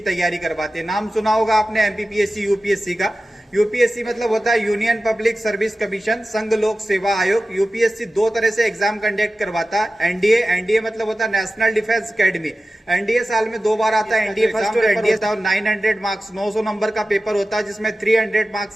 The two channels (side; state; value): both; normal; correlation 0.95